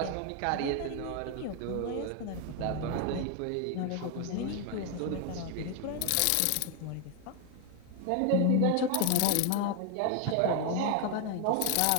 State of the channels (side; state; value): both; different; correlation 0.01